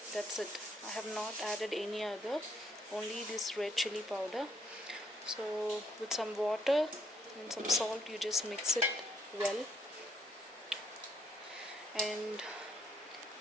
That's it. I have not added any other, only this red chili powder. So with some water and some salt, you just mix it well. And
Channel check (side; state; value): both; normal; correlation 0.71